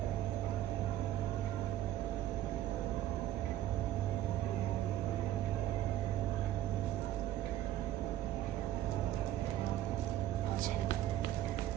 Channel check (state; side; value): quieter; left; 12.9 dB